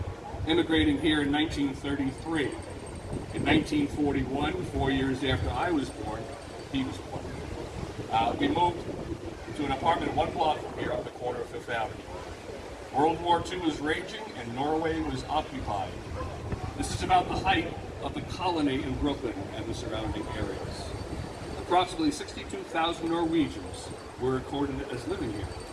immigrating here in 1933. In 1941, 4 years after I was born, he was born. We moved to an apartment 1 block from here on the corner of Fifth Avenue. World War II was raging and Norway was occupied. This is about the height of the colony in Brooklyn and the surrounding areas. Approximately 62,000 Norwegians were recorded as living here.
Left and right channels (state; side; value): identical; both; correlation 1.00